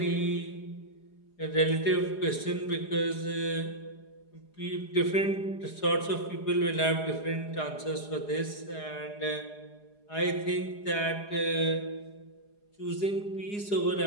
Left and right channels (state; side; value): late; right; 4.8 ms